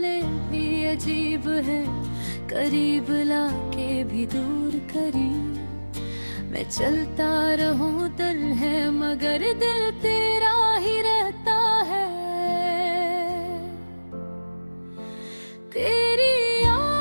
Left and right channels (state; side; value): inverted; both; correlation -1.00